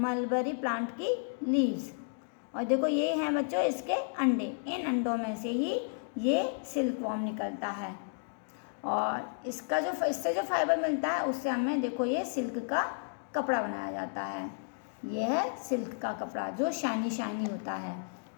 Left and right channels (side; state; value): right; silent; digital silence